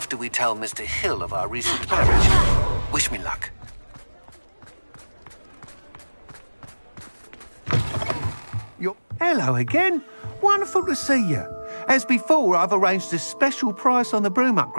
we tell Mr. Hill of our recent marriage. Wish me luck. Hello again. Wonderful to see you. As before, I've arranged a special price on the broom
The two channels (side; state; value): both; inverted; correlation -1.00